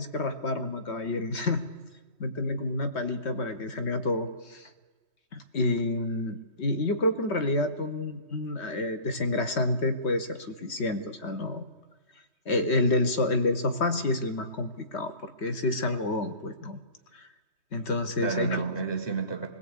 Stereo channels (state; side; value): late; right; 3.2 ms